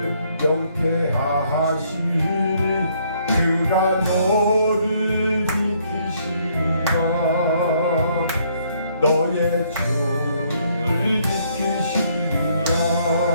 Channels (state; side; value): inverted; both; correlation -0.67